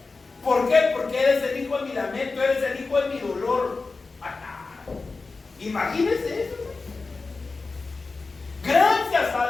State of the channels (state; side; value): quieter; right; 4.0 dB